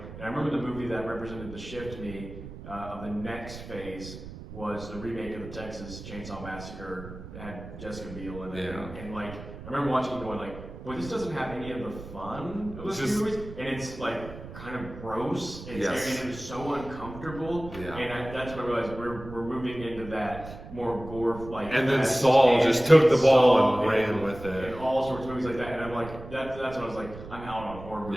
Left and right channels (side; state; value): right; noise; rumble, 13 dB below the sound